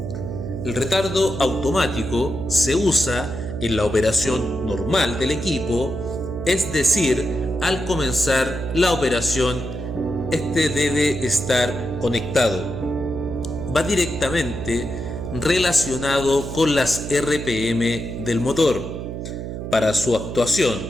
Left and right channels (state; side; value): noise; right; hum, 6 dB below the sound